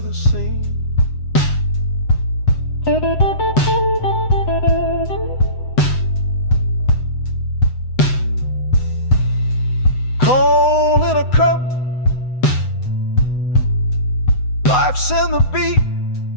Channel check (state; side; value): late; right; 7.9 ms